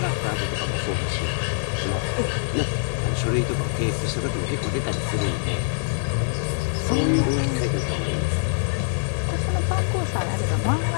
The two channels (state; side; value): silent; right; digital silence